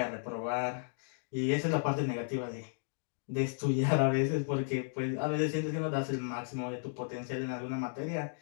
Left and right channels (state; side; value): silent; right; digital silence